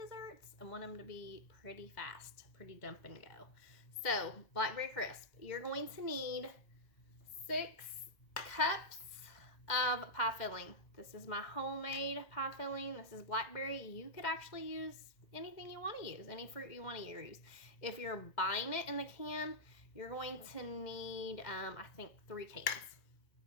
I want them to be pretty fast, pretty dump and go. So Blackberry crisp, you're going to need 6 cups of pie filling. This is my homemade pie filling. This is blackberry. You could actually use anything you want to use, any fruit you want to use. If you're buying it in the can, you're going to need, I think, 3 cans.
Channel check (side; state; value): right; late; 2.1 ms